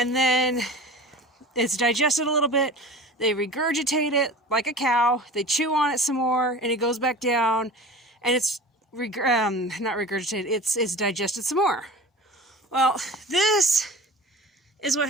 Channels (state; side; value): normal; both; correlation 0.37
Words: then it's digested a little bit. They regurgitate it like a cow. They chew on it some more, and it goes back down, and it's not regurgitated. It's digested some more. Well, this is what